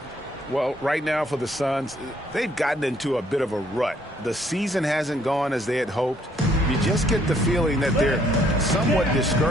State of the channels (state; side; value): normal; both; correlation 0.66